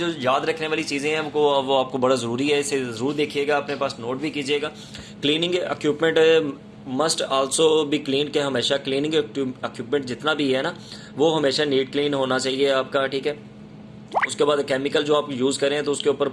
याद रखने वाली चीज़ें हैं वो आपको बड़ा ज़रूरी है, इसे ज़रूर देखिएगा, अपने पास नोट भी कीजिएगा। Cleaning equipment must also be clean, के हमेशा क्लीनिंग इक्विपमेंट जितना भी है ना वो हमेशा नीट क्लीन होना चाहिए आपका। ठीक है, उसके बाद केमिकल जो आप यूज़ करें तो उसके ऊपर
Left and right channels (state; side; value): identical; both; correlation 1.00